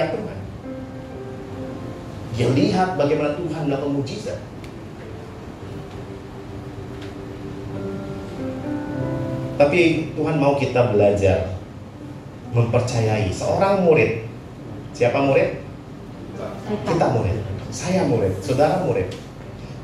Tuhan. Dia lihat bagaimana Tuhan melakukan mujizat. Tapi Tuhan mau kita belajar mempercayai seorang murid. Siapa murid? Kita murid. Saya murid. Saudara murid.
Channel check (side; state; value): both; identical; correlation 1.00